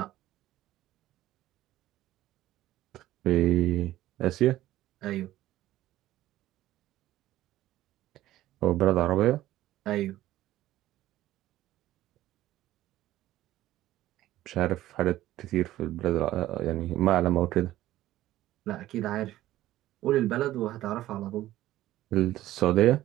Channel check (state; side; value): quieter; left; 14.7 dB